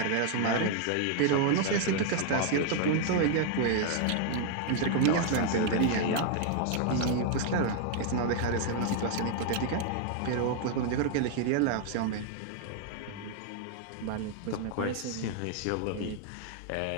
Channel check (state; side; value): different; both; correlation 0.00